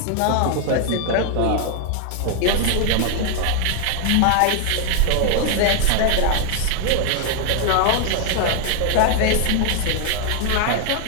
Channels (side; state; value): both; different; correlation 0.00